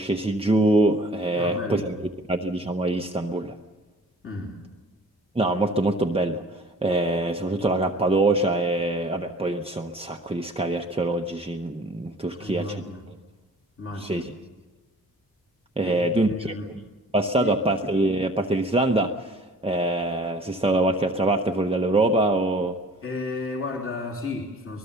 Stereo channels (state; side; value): normal; both; correlation 0.49